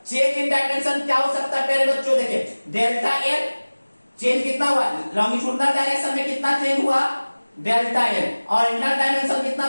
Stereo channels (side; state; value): both; inverted; correlation -1.00